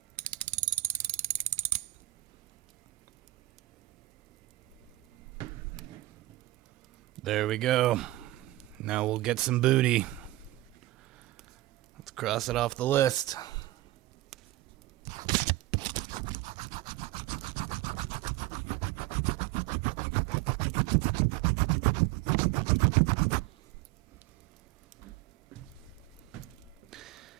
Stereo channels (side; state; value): left; quieter; 17.5 dB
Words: There we go. Now we'll get some booty. Cross it off the list.